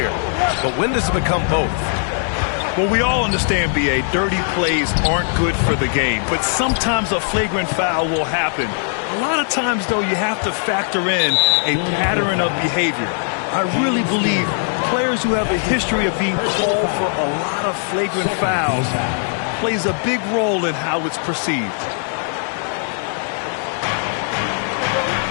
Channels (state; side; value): silent; right; 59 dB below the other